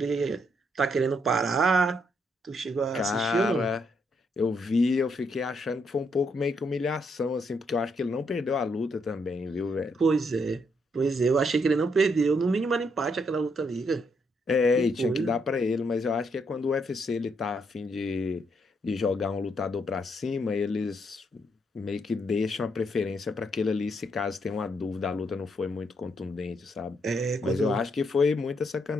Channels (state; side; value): normal; both; correlation 0.75